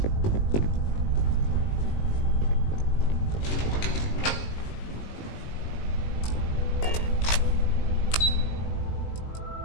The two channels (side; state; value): right; late; 19 ms